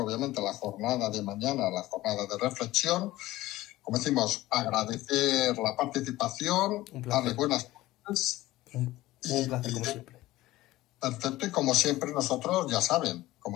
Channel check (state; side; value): quieter; right; 17.2 dB